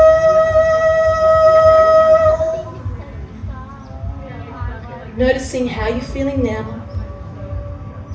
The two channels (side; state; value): both; identical; correlation 1.00